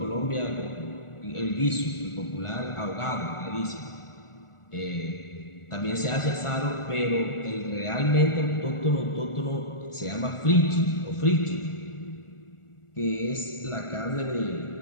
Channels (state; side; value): late; right; 1.4 ms